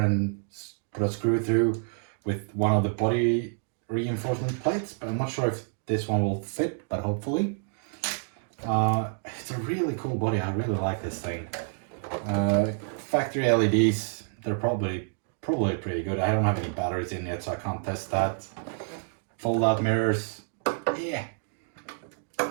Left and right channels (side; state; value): left; silent; 59 dB below the other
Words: put a screw through with one of the body reinforcement plates, but I'm not sure if this one will fit, but hopefully. It's a really cool body. I really like this thing. Factory LEDs, they're probably pretty good. I don't have any batteries in yet, so I can't test that. Fold out mirrors, yeah,